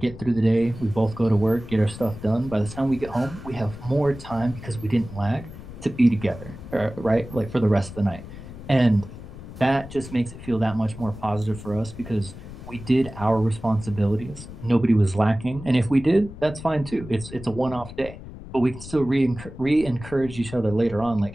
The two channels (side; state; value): left; noise; rumble, 14 dB below the sound